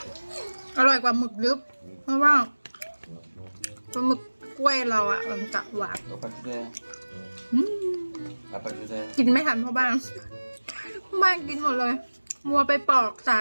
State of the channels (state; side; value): inverted; both; correlation -1.00